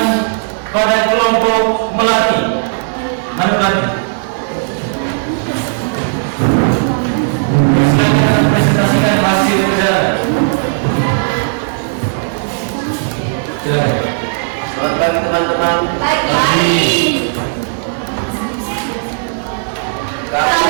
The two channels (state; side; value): silent; left; 69 dB below the other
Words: pada kelompok melati. Mana melati? Silakan presentasikan hasil kerja. Silakan. Selamat pagi teman-teman. Baik, baik.